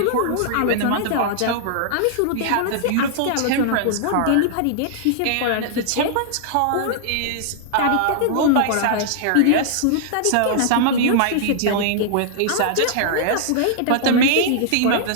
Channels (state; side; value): different; both; correlation -0.01